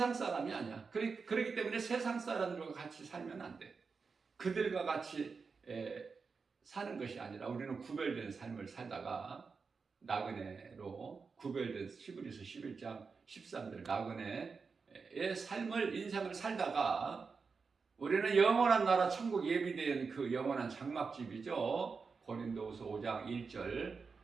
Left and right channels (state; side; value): quieter; left; 5.0 dB